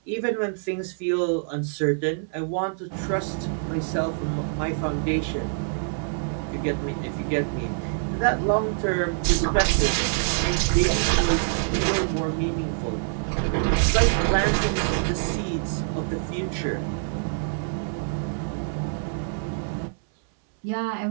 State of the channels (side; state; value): left; silent; 61 dB below the other